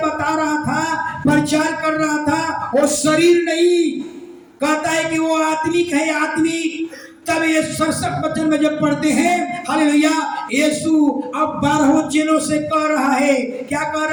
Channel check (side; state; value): both; identical; correlation 1.00